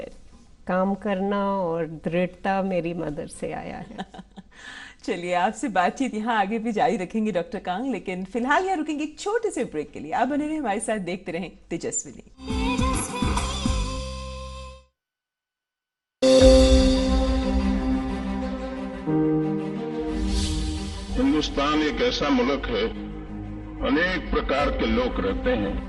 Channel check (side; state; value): both; identical; correlation 1.00